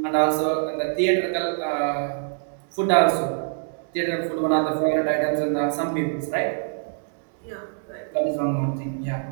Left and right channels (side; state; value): left; silent; digital silence